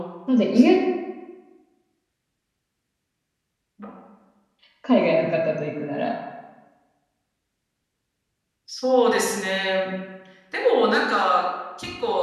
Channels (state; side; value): identical; both; correlation 1.00